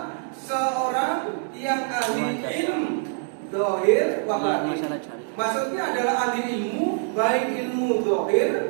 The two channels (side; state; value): left; silent; digital silence